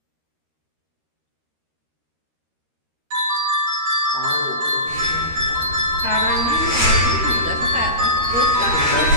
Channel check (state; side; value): late; left; 13 ms